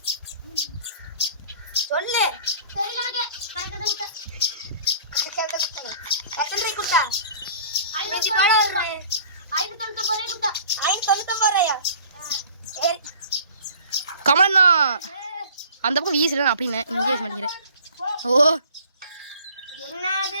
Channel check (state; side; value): inverted; both; correlation -0.49